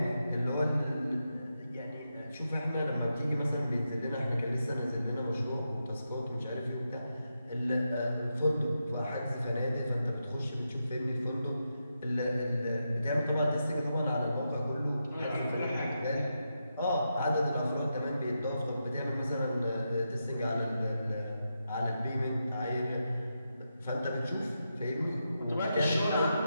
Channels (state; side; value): inverted; both; correlation -0.86